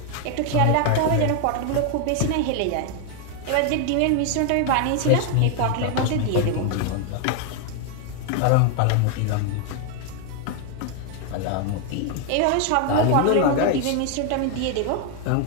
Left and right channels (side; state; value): both; different; correlation 0.00